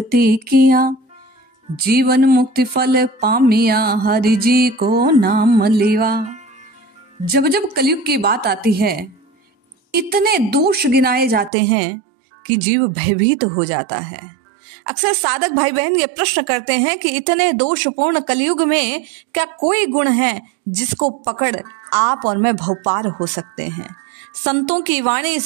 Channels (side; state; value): left; drops out; at 11.5 s